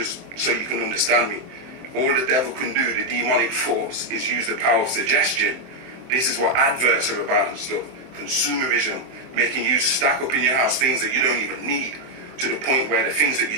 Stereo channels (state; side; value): late; left; 23 ms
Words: so you can understand me. All the devil can do, the demonic force, is use the power of suggestion. This is what adverts are about and stuff. Consumerism, making you stack up in your house things that you don't even need, to the point where the things that you